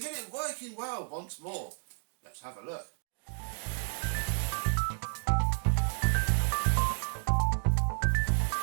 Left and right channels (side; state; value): left; silent; digital silence